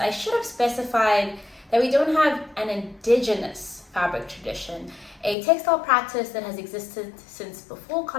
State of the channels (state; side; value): drops out; right; at 5.4 s